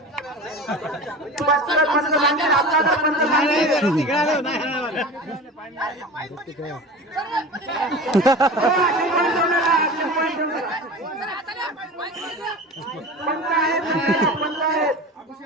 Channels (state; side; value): normal; both; correlation 0.33